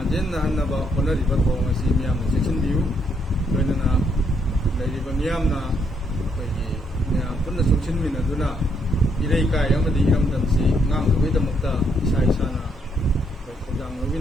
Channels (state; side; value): normal; both; correlation 0.74